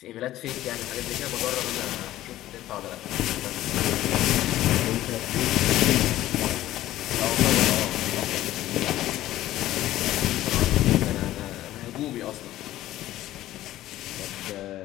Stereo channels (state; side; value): quieter; right; 14.5 dB